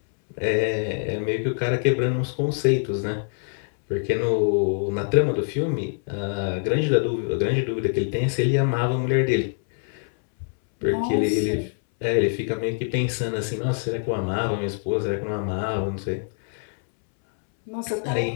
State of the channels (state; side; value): silent; right; 62 dB below the other